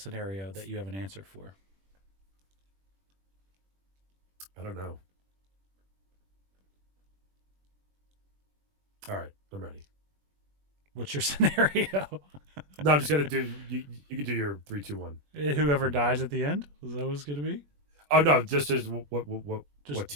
that you have an answer for. I don't know. All right, I'm ready. What's your scenario? No, I'm just gonna do. You can do your 3, 2, 1. Whoever dies at the end. Is that what it's gonna be? Oh no, just what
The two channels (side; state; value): left; late; 21 ms